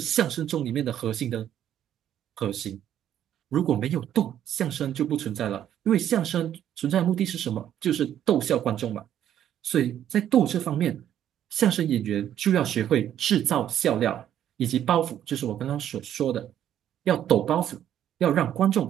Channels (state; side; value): quieter; left; 10.6 dB